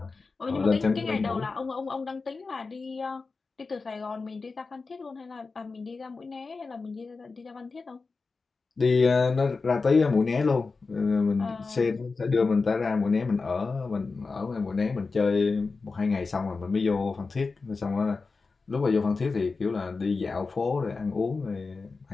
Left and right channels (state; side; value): quieter; right; 4.2 dB